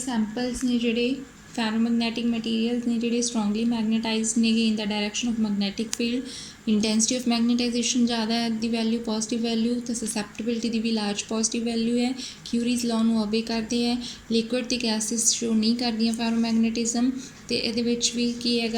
ਨੇ ਜਿਹੜੇ ਪੈਰਾਮੈਗਨੈਟਿਕ ਮਟੀਰੀਅਲਸ ਨੇ ਜਿਹੜੇ ਸਟਰੋਂਗਲੀ ਮੈਗਨੇਟਾਈਜ਼ਡ ਨੇਗੇ in the direction of magnetic field. Intensity of magnetization ਜ਼ਿਆਦਾ ਹੈ ਦੀ ਵੈਲਿਊ, ਪੋਜ਼ੀਟਿਵ ਵੈਲਿਊ, ਤਾਂ ਸਸੈਪਟੇਬਿਲਿਟੀ ਦੀ ਵੀ ਲਾਰਜ ਪੋਜ਼ੀਟਿਵ ਵੈਲਿਊ ਹੈ। ਕਿਊਰੀਜ਼ ਲਾਅ ਨੂੰ ਓਬੇ ਕਰਦੇ ਹੈ। ਲਿਕੁਇਡ ਅਤੇ ਗੈਸਿਸ ਸ਼ੋ ਨਹੀਂ ਕਰਦੀਆਂ ਫੈਰੋਮੈਗਨੇਟਿਜ਼ਮ। ਅਤੇ ਇਹਦੇ ਵਿੱਚ ਵੀ ਕੀ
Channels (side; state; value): both; identical; correlation 1.00